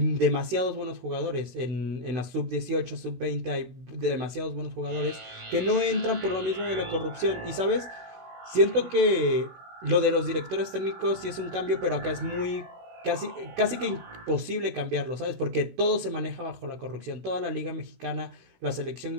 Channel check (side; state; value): left; late; 16 ms